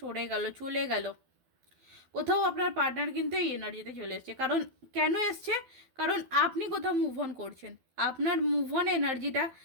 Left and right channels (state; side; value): late; left; 12 ms